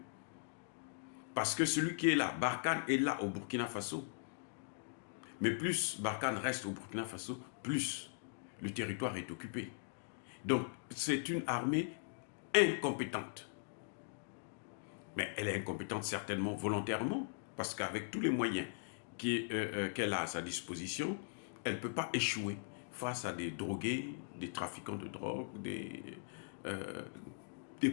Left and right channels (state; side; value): silent; right; digital silence